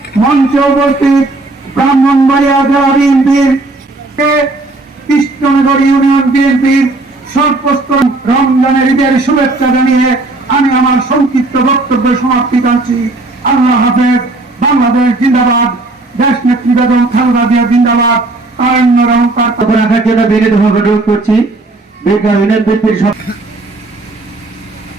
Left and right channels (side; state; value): left; quieter; 3.0 dB